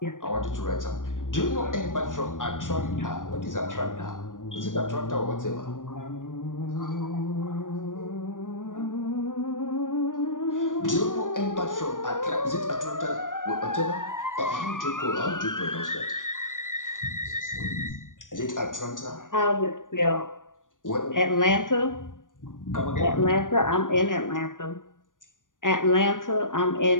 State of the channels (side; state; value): right; late; 0.88 ms